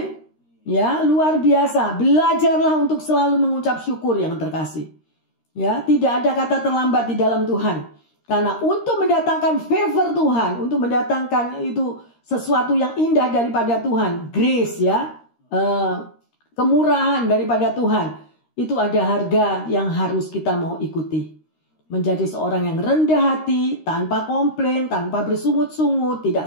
Ya, luar biasa. Belajarlah untuk selalu mengucap syukur yang terkasih. Ya, tidak ada kata terlambat di dalam Tuhan. Karena untuk mendatangkan favor Tuhan, untuk mendatangkan itu sesuatu yang indah daripada Tuhan, grace ya, kemurahan daripada Tuhan, itu ada harga yang harus kita mau ikuti. Menjadi seorang yang rendah hati, tanpa komplain, tanpa bersungut-sungut, tidak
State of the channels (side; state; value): right; late; 13 ms